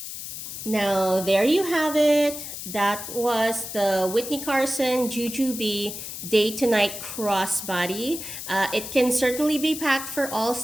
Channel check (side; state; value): left; noise; hiss, 8 dB below the sound